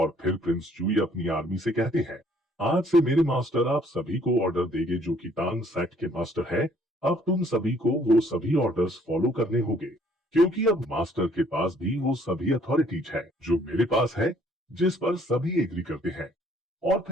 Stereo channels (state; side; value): normal; both; correlation 0.62